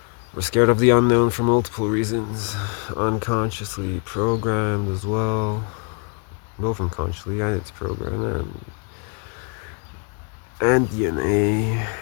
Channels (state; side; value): quieter; right; 37.5 dB